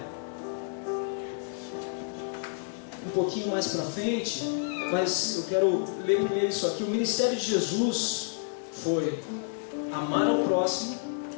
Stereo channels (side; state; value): right; silent; digital silence